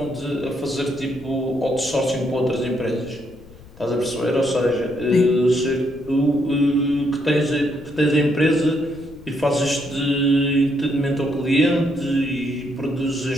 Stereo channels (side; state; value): left; noise; rumble, 21 dB below the sound